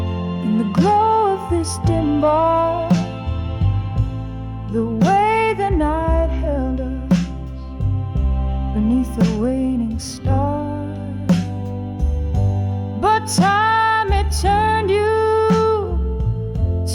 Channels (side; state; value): both; identical; correlation 1.00